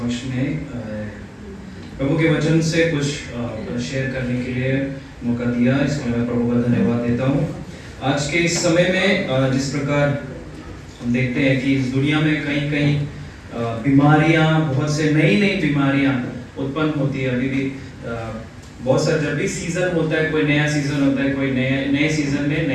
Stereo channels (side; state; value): both; identical; correlation 1.00